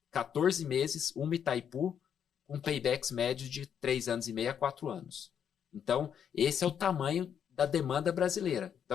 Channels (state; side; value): quieter; right; 8.4 dB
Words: 14 meses uma Itaipu com paybacks médios de 3 anos e meio a 4 anos. Então, esse é o tamanho da demanda brasileira.